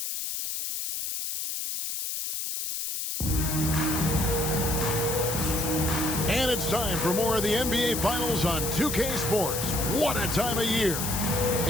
And it's time for more of the NBA Finals on 2K Sports. What a time of year.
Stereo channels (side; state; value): left; noise; hiss, 3 dB below the sound